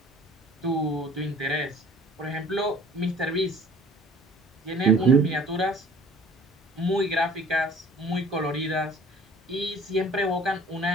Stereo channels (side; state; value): both; normal; correlation 0.50